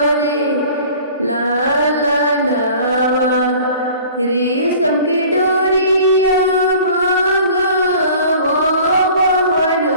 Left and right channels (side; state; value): both; inverted; correlation -0.47